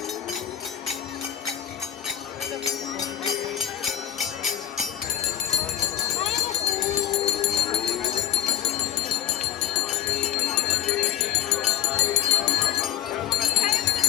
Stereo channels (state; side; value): quieter; right; 11.6 dB